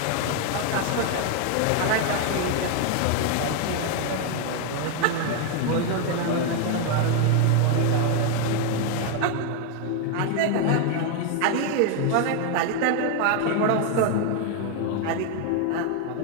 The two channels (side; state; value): both; different; correlation 0.01